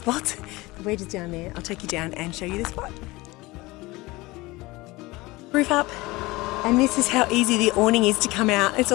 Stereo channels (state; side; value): quieter; right; 21.3 dB